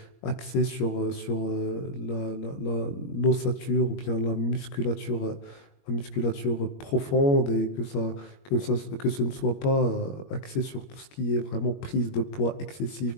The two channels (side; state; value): right; late; 21 ms